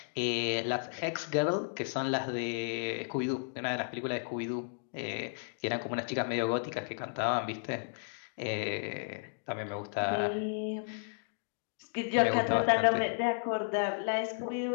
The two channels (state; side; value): silent; right; digital silence